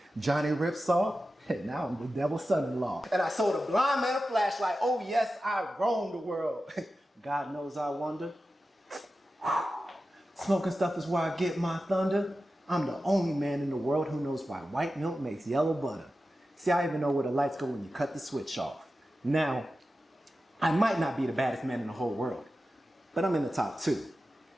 Johnny Ripsaw, and now I'm the devil's son-in-law. And I sold a blind man a flashlight. Oh yes, I roamed the world. God knows I wonder. Smoking stuff is where I get my thunder. I'm the only man in the world who knows why white milk makes yellow butter. See, I even know where the lights go when you cut the switch off. Now, I might not be the baddest man in the whole world, but I'm in the top 2.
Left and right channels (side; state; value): both; normal; correlation 0.93